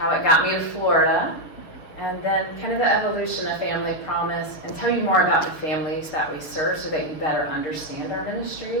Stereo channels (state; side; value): late; right; 6.7 ms